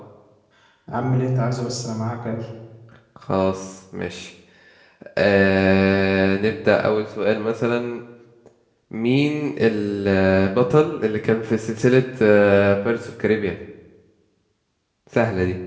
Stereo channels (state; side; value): identical; both; correlation 1.00